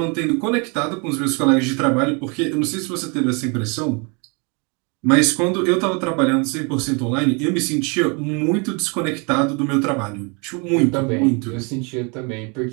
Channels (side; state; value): left; quieter; 32.7 dB